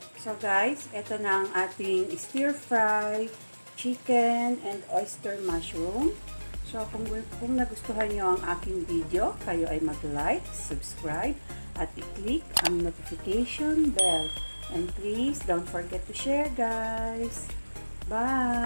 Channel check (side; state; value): both; inverted; correlation -1.00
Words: So guys, ito na ang ating stir-fry chicken and oyster mushroom. So kung nagustuhan nyo ang aking video, kayo ay mag-like, subscribe, at i-click ang notification bell. And please don't forget to share guys.